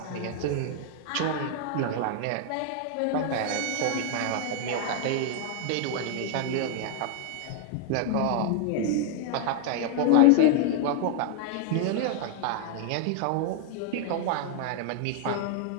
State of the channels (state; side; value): different; both; correlation 0.00